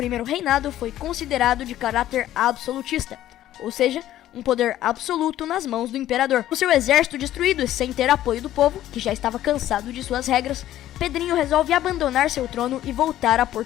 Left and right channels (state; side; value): quieter; right; 13.1 dB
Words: reinado foi considerado de caráter absolutista, ou seja, um poder absoluto nas mãos do imperador. Com seu exército destruído e sem ter apoio do povo, que já estava cansado de suas regras, Pedrinho resolve abandonar seu trono e voltar a